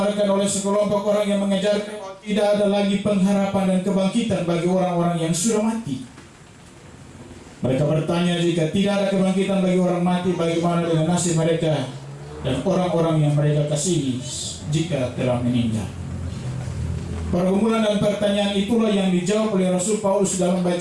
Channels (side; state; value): both; identical; correlation 1.00